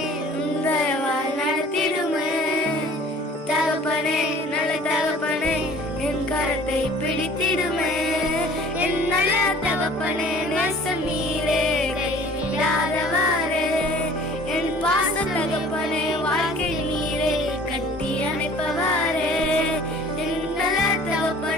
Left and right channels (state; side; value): normal; both; correlation 0.49